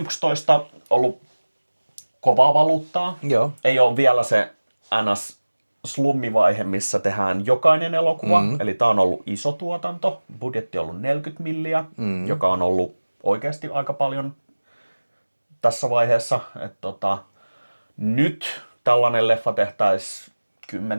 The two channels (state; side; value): inverted; both; correlation -1.00